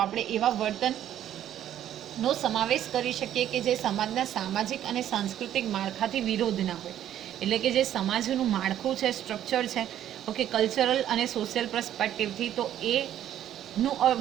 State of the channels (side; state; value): left; quieter; 11.3 dB